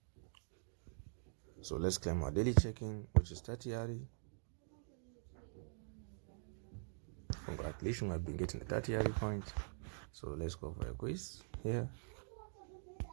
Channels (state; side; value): silent; left; digital silence